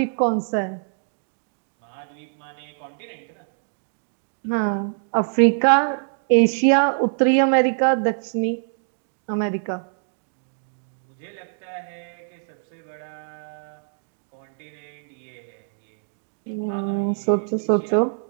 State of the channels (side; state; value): left; silent; digital silence